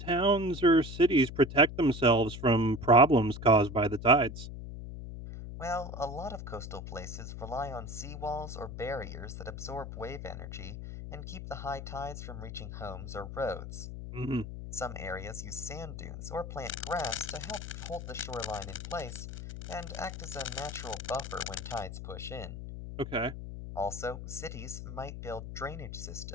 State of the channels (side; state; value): left; noise; hum, 9 dB below the sound